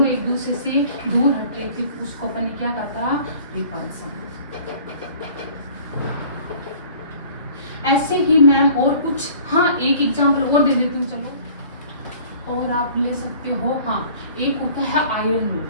एक दूसरे से दूर हट रही थी, उसको अपन ने क्या कहा था, रिपल्सन। ऐसे ही मैम और कुछ, हाँ एक एग्जांपल और दे देती हूँ, चलो और आप ले सकते हो। हाँ एक होता है आयरन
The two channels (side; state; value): both; inverted; correlation -0.50